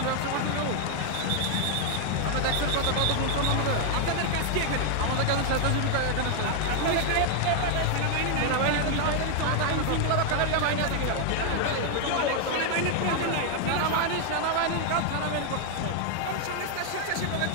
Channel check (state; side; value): different; both; correlation 0.00